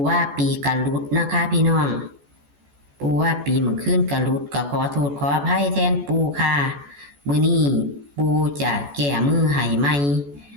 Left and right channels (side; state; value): left; late; 14 ms